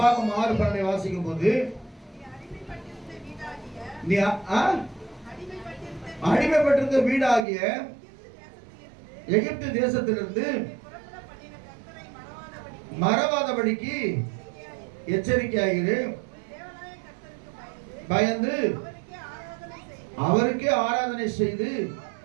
6:12 வாசிக்கும் போது, நீ அடிமைப்பட்டிருந்த வீடாகிய எகிப்து தேசத்திலிருந்து மறவாதபடிக்கு எச்சரிக்கையாயிரு. பயந்து அவருக்கே ஆராதனை செய்து.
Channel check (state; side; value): drops out; left; at 7.4 s